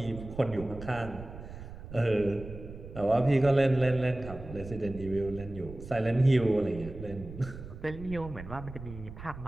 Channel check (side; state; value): right; noise; rumble, 13 dB below the sound